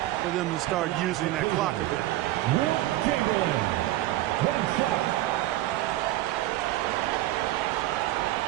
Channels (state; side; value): quieter; left; 15.9 dB